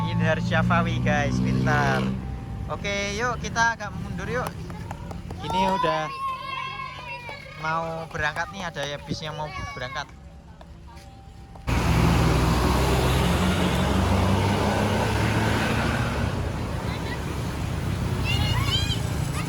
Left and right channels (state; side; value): identical; both; correlation 1.00